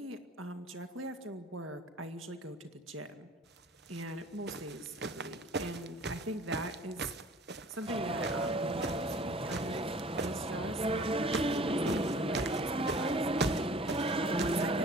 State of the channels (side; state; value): both; normal; correlation 0.48